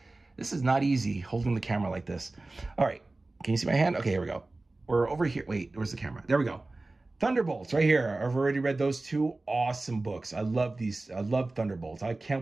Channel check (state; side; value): quieter; left; 3.1 dB